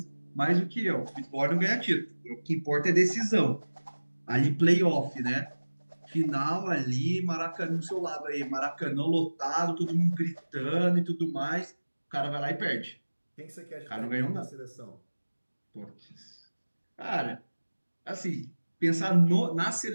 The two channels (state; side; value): inverted; both; correlation -1.00